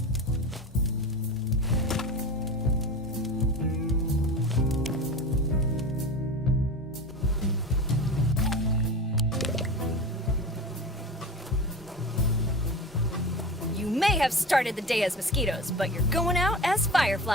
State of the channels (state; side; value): normal; both; correlation 0.30